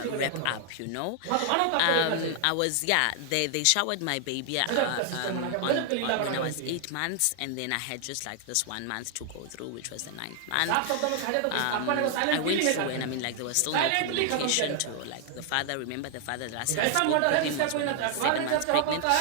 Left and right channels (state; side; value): different; both; correlation 0.00